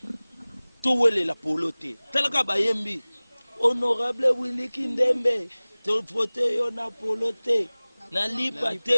to wele la poloté talaka ba yembi honorable Willy Kindembe to vote yo na poloté na lipa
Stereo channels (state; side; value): inverted; both; correlation -0.99